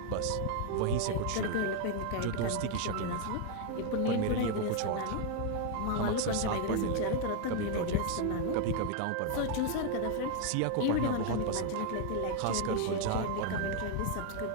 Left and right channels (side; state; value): both; different; correlation 0.00